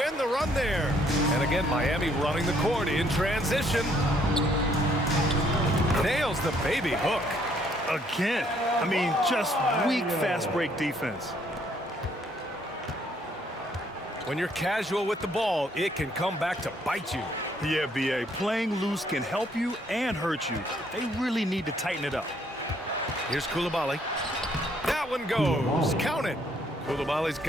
end the run there. And again, Miami running the court in transition. Nails the baby hook. Again, I mean, just weak fast break defense. When you're casual with the ball, it can come back to bite you. Yeah, B.A., playing loose can help you and hurt you. They really need to tighten it up. Here's Coulibaly. That one goes. Count it. Coulibaly's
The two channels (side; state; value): both; normal; correlation 0.67